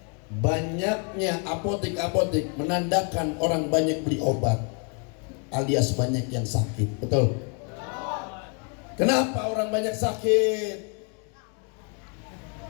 banyaknya apotek-apotek menandakan orang banyak beli obat, alias banyak yang sakit. Betul? Kenapa orang banyak sakit?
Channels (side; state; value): right; quieter; 37.4 dB